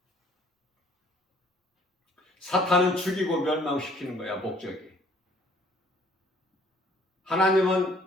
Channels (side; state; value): both; normal; correlation 0.59